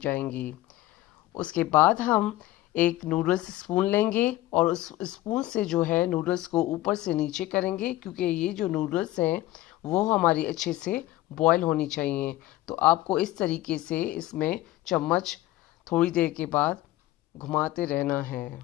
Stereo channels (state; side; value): quieter; right; 16.0 dB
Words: उसके बाद हम एक नूडल्स स्पून लेंगे और उस स्पून से जो है नूडल्स को ऊपर से नीचे करेंगे, क्योंकि ये जो नूडल्स हैं वो हमारी अच्छे से बॉयल होनी चाहिए। तो आपको इस तरीके से इसमें चम्मच थोड़ी देर के बाद घुमाते रहना